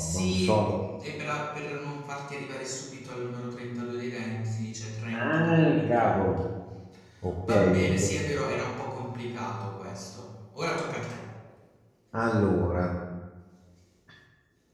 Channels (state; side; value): identical; both; correlation 1.00